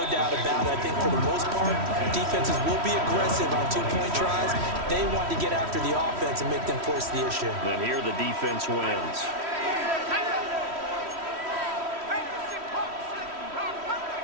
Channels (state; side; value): late; left; 3.1 ms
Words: doubt about it. I think for the most part, defenses will be aggressive on 2-point tries. They want to get after the offense and make them force the issue. And here the defense wins.